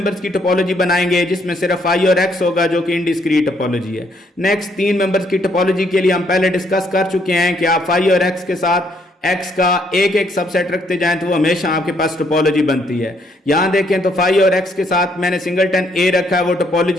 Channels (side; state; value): both; normal; correlation 0.70